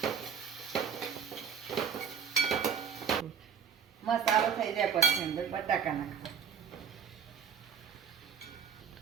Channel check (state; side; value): quieter; left; 7.3 dB